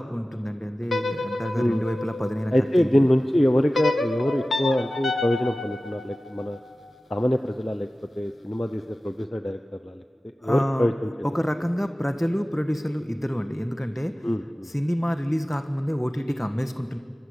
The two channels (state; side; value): normal; both; correlation 0.96